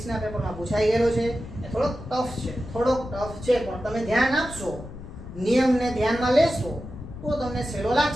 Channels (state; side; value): noise; left; rumble, 13 dB below the sound